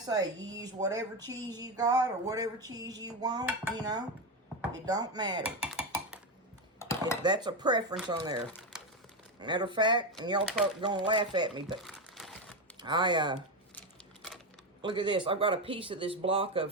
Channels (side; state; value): both; normal; correlation 0.12